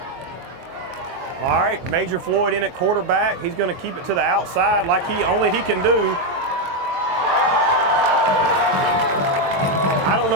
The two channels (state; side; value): late; left; 22 ms